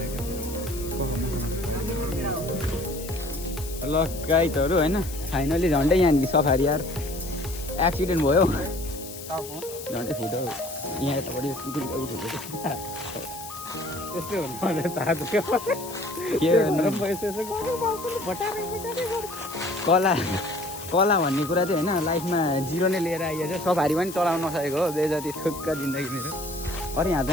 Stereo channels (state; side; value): noise; left; hiss, 12 dB below the sound